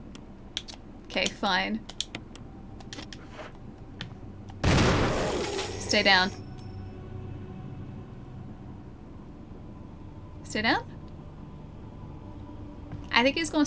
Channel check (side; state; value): both; identical; correlation 1.00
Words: Okay, fine. Stay down. Stay down? I think he's gonna